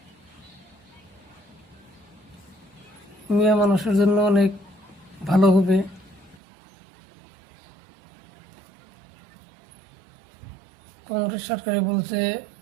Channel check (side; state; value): left; drops out; at 6.4 s